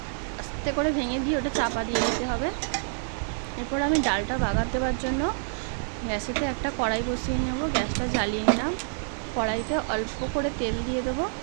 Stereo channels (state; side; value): silent; left; digital silence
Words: আস্তে করে ভেঙে দিয়ে ওটা চাপা দিয়ে দিতে হবে। এরপর আমি ডালটা বাগার দেওয়ার জন্য গ্যাসেতে একটা কড়াই বসিয়ে নেব। গ্যাসটা জ্বালিয়ে নিলাম। কড়াইতে অল্প করে তেল দিয়ে দেবো।